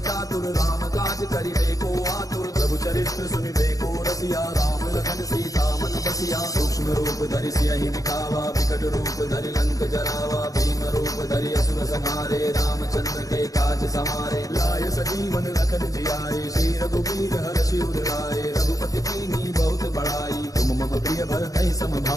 चातुर, राम काज करिबे को आतुर। प्रभु चरित्र सुनिबे को रसिया, राम लखन सीता मन बसिया। सूक्ष्म रूप धरि सियहि दिखावा, विकट रूप धरि लंक जरावा। भीम रूप धरि असुर संहारे, रामचंद्र के काज समारे। लाय सजीवन लखन जियाए, श्री रघुवीर हर्षि उर लाए। रघुपति कीन्ही बहुत बड़ाई, तुम मम प्रिय भरतहि सम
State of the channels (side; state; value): right; late; 0.17 ms